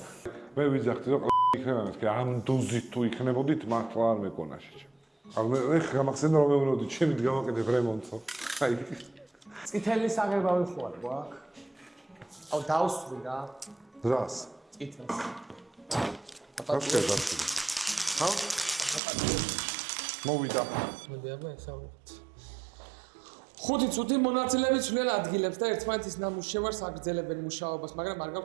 მე ვიძახდი რომ იქნება მეთქე ამ დოზით თუ იქნებოდით მართლა არ მეკონა შეჭე. მე გამახსენდა რომ მეუბნებოდი ჩემით გავაკეთებ რემონტო. აი წითელი საღებავი ხوار გვაქვს. აუ დავსვი რა. რას? წითელს. გასკეთე. ჰა? მოვიდა. მოდი აბა ესავით. 5 წუთი მონაწილეები ცვლიან ადგილებს და ერთმანეთის ნამუშევარს აგრძელებენ მუშაობას, მაგრამ არ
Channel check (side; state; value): left; drops out; at 19.0 s